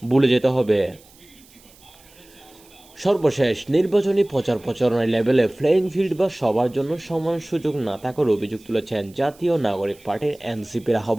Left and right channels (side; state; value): right; noise; hiss, 26 dB below the sound